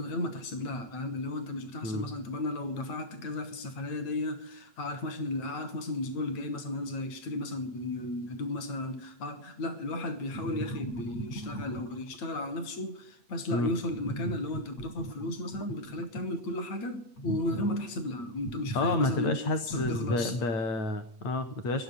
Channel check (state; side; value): late; right; 8.5 ms